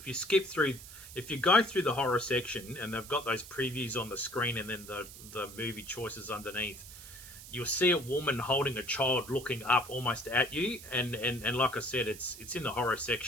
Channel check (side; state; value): right; noise; hiss, 15 dB below the sound